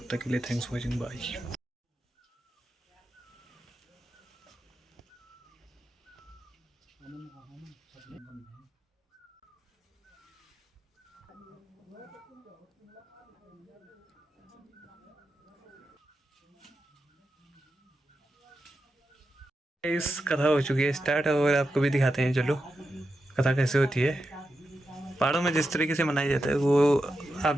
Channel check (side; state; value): both; normal; correlation 0.89